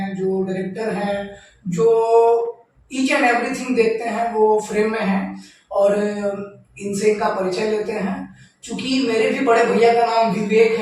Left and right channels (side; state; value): both; identical; correlation 1.00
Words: जो डायरेक्टर हैं, जो ईच एंड एवरीथिंग देखते हैं वो फ्रेम में हैं। और इनसे इनका परिचय लेते हैं। चूंकि मेरे भी बड़े भैया का नाम विवेक